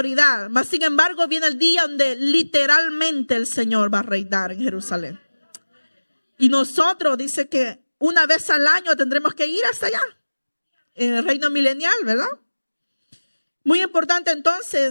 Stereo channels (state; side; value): inverted; both; correlation -1.00